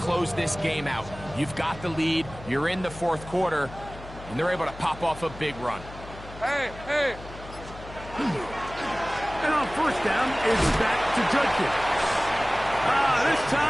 this game out. You've got the lead, you're in the 4th quarter, and they're able to pop off a big run. Hey, hey. And on first down, it's back to Judkins. This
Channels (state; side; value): noise; left; hum, 15 dB below the sound